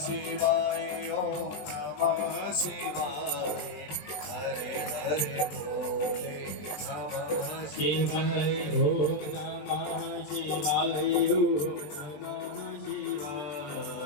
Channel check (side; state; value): right; late; 20 ms